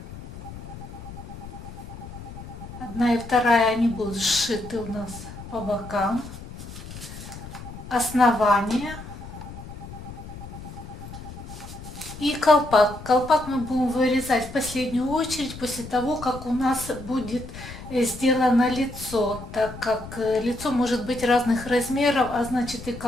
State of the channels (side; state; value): left; noise; rumble, 13 dB below the sound